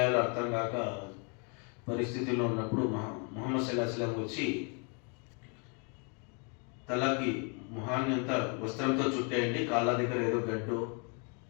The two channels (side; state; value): right; quieter; 36.5 dB